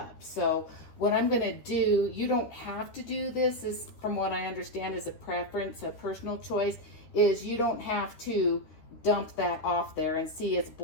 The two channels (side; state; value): right; late; 13 ms